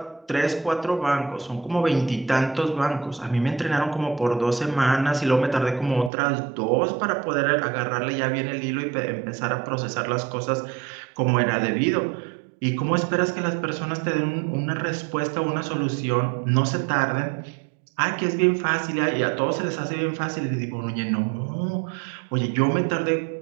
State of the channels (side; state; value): left; drops out; at 6.1 s